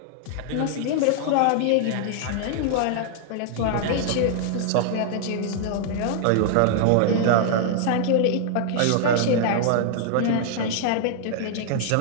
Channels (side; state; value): both; different; correlation -0.01